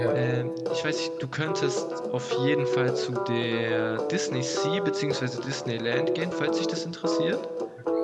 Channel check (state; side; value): identical; both; correlation 1.00